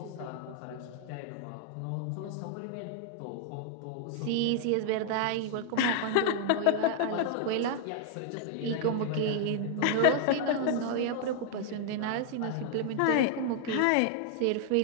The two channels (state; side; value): different; both; correlation 0.00